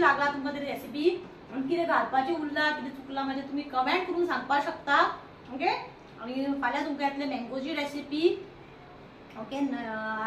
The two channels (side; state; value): both; identical; correlation 1.00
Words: तुमकां ती रेसिपी. आनी कितें घालपाचें उरलां कितें चुकलां म्हणजे तुम्ही कमेंट करून सांगपाक शकता. ओके, आनी फाल्यां तुमकां येतले मँगोची रेसिपी. ओके,